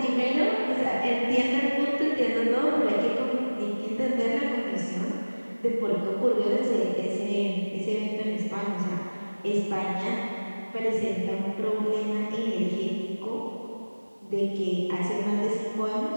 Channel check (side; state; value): both; inverted; correlation -1.00